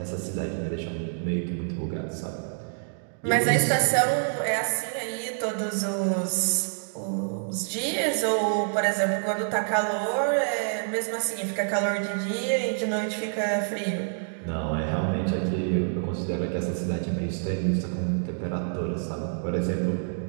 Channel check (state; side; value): silent; left; digital silence